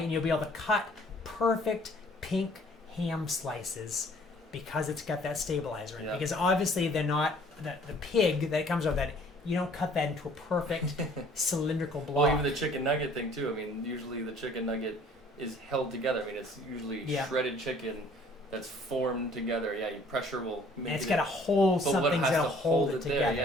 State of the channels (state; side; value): normal; both; correlation 0.56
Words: you'll be able to cut perfect pink ham slices because it's got that stabilizer in it. Because obviously they're not, the pig that comes out of that, you don't cut that into a perfect cylindrical blob. Well, even the chicken nugget thing too. I mean, usually the chicken nugget is held together. I mean, it's usually shredded chicken that's formed together. Yeah, your pressure will make and it's got to hold something to hold it together. There.